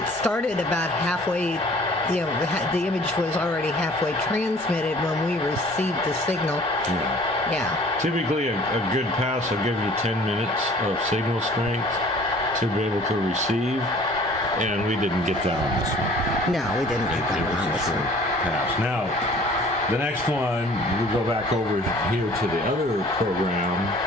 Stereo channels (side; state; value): both; normal; correlation 0.51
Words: started about halfway. The image was already halfway transmitted when we received the signal. Yeah. Typically, a good pass will give you 10 minutes of signal strength to be able to receive, and we didn't get that on this one. No, we didn't get that on this one. Pass. Now, the next one, we go back over here to the other program.